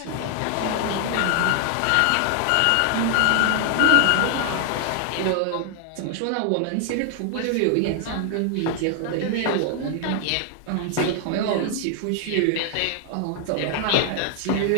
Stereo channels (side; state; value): both; different; correlation 0.00